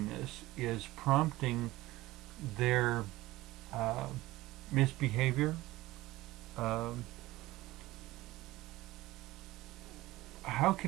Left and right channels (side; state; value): left; quieter; 18.1 dB